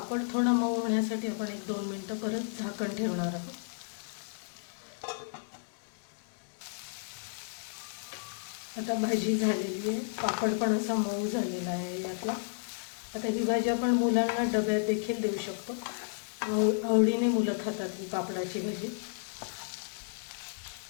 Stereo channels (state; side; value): silent; right; digital silence